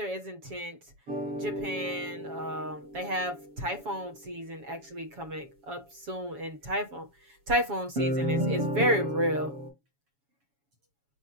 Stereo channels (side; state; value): left; late; 7.2 ms